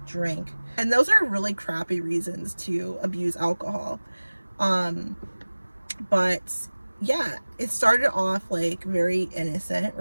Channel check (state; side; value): inverted; both; correlation -1.00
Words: drink. And those are really crappy reasons to abuse alcohol. But yeah, it started off like very innocent,